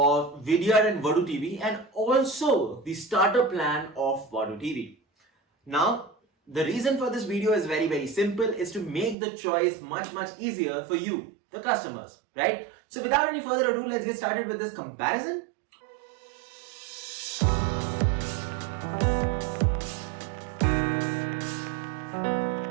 Vidyard and Vadootv and also the starter plan of Vadootv. Now, the reason for this video is very simple, is to make the choice much easier for you, the customers, right? So without any further ado, let's get started with this comparison.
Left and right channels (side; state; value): left; drops out; at 9.2 s